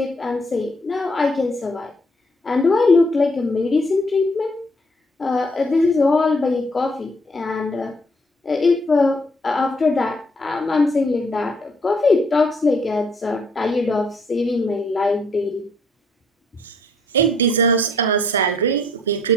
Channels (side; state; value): both; normal; correlation 0.66